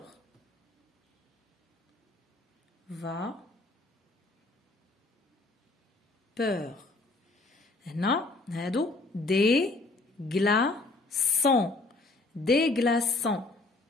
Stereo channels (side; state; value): right; quieter; 3.2 dB